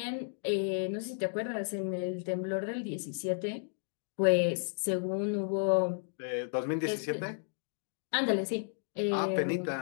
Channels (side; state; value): right; silent; digital silence